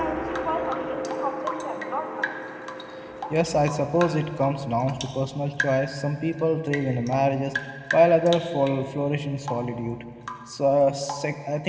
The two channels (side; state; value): both; identical; correlation 1.00